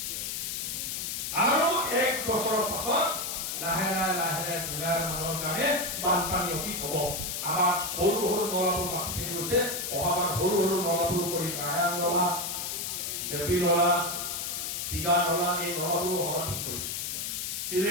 আৰু 1 বছৰৰ পাছত লাহে লাহে জুলাইৰ মাহৰ কাৰণে বানপানী অতীত হ'ব আমাৰ সৰু নলাবোৰ বাকী থাকি গৈছে অহাবাৰ সৰু নলাবোৰ কৰি নাৰায়ণ নলা দেৱী নলা চিগা নলা এই নলাবোৰ অহা ঠিক কৰি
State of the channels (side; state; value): left; noise; hiss, 3 dB below the sound